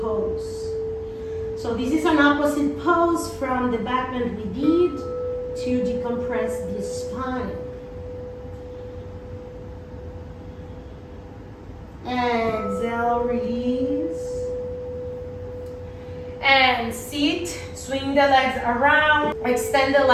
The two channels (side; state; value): both; identical; correlation 1.00